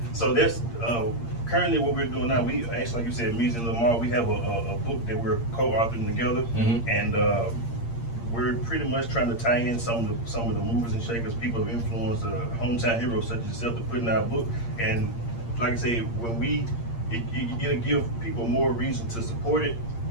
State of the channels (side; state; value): right; late; 8.6 ms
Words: so that's currently what we're doing now. We actually, like you said, Meezy and Lamar, we have a book that we're co-authoring together, Mm-hmm. and we're pretty much trying to tie in some of the movers and shakers, people of influence, hometown heroes such as yourself, to put in our book. And like I say, when it'll give people more reason to support it,